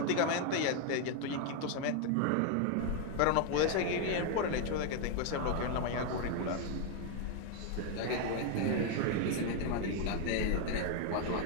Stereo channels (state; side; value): different; both; correlation 0.01